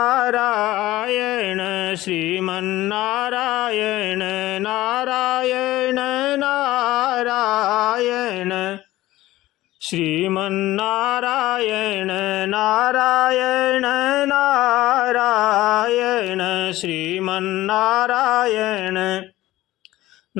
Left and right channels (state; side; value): quieter; right; 16.4 dB